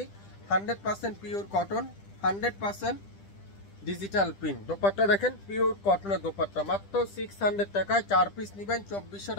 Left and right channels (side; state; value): right; late; 10 ms